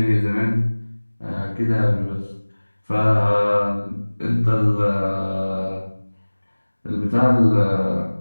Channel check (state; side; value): inverted; both; correlation -1.00